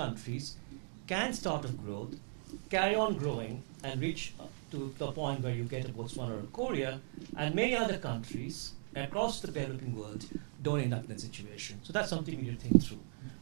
can start off growth, carry on growing, and reach to the point where you get a Botswana or a Korea, and many other countries across the developing world don't end up in that situation. So that's something we need to think through.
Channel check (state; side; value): silent; left; digital silence